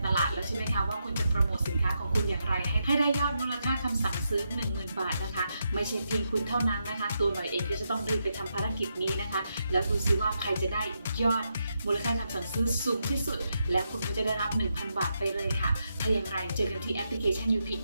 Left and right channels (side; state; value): both; inverted; correlation -0.83